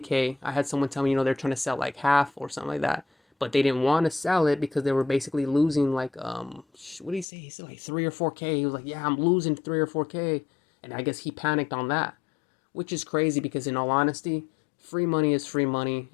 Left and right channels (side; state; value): right; drops out; at 7.2 s